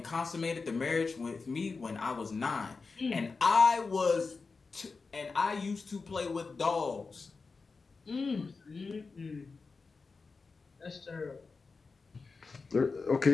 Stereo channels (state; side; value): quieter; right; 4.4 dB